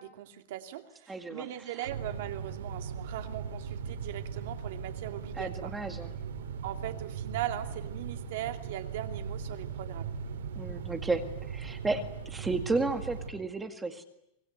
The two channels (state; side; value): quieter; left; 5.1 dB